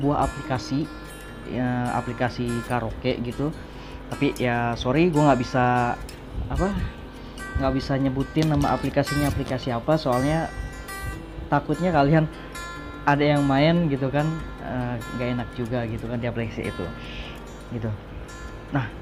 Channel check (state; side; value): identical; both; correlation 1.00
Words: aplikasi ya, aplikasi karaoke gitu. Tapi ya sorry, gue nggak bisa nyebutin nama aplikasinya aplikasi apa, soalnya takutnya kalian ada yang main gitu kan, nggak enak juga gitu kan di aplikasi itu gitu. Nah,